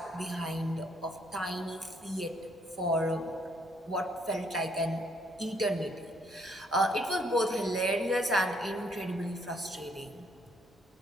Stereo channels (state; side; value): normal; both; correlation 0.69